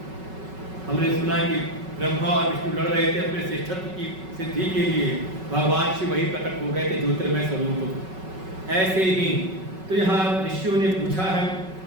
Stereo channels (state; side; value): late; left; 5.3 ms